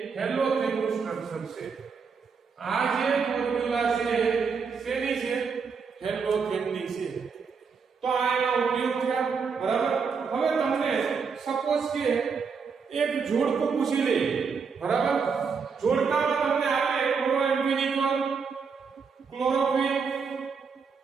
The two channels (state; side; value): quieter; left; 5.6 dB